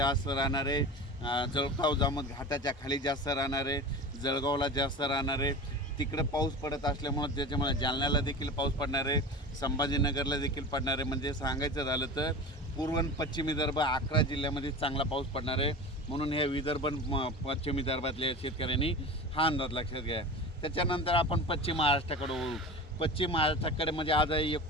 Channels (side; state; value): both; normal; correlation 0.32